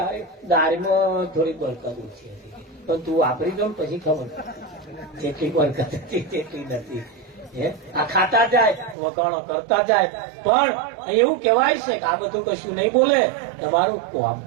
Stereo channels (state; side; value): drops out; left; at 9.0 s